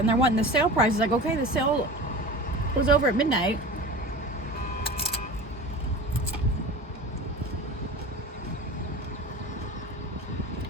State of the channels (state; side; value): normal; both; correlation 0.34